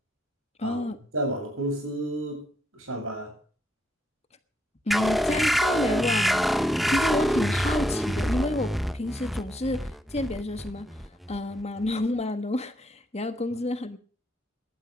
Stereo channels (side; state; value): both; normal; correlation 0.77